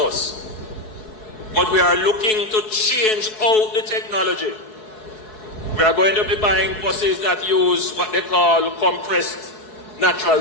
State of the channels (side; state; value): right; late; 4.6 ms